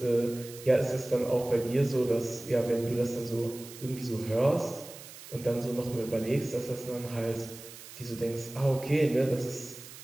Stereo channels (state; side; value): noise; right; hiss, 16 dB below the sound